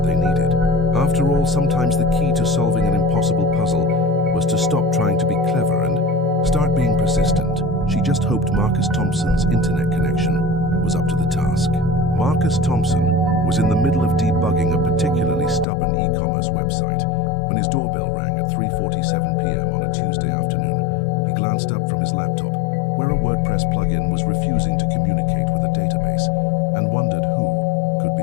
they needed. After all, sometimes the key to solving an impossible puzzle was to stop trying to be clever and start being persistent. She just hoped Marcus Thompson's internet connection was up to the task. Marcus Thompson was in the middle of debugging a particularly stubborn e-commerce website when his doorbell rang at 3:47 p.m. on a Tuesday afternoon. He glanced up from his laptop, where a WordPress plugin was refusing to communicate with a database, and wondered who could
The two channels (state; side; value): drops out; right; at 15.7 s